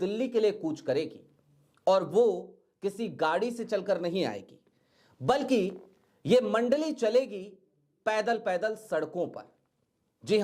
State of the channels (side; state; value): both; identical; correlation 1.00